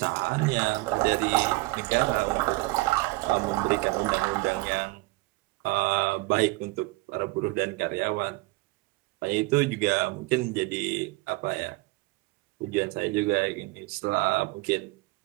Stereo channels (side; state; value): left; quieter; 22.2 dB